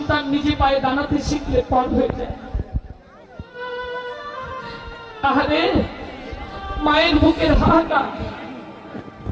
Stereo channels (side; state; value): both; identical; correlation 1.00